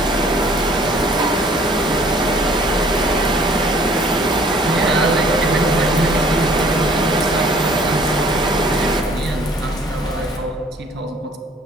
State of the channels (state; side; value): normal; both; correlation 0.56